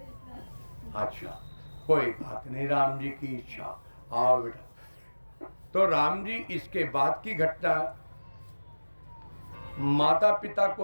अच्छा, कोई बात नहीं, राम जी की इच्छा। आओ बेटा। तो राम जी, इसके बाद की घटना, माता पिता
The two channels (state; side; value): inverted; both; correlation -1.00